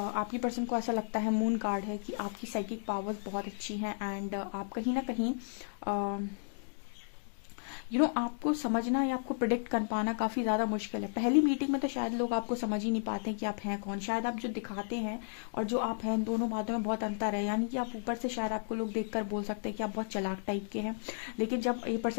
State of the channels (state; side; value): silent; right; digital silence